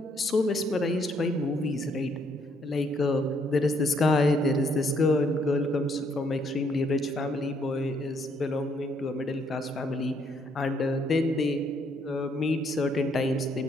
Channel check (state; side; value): normal; both; correlation 0.70